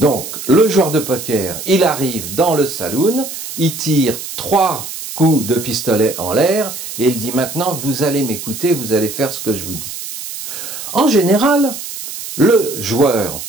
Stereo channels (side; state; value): right; noise; hiss, 9 dB below the sound